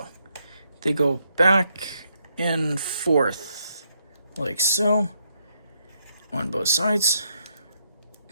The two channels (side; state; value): both; inverted; correlation -0.77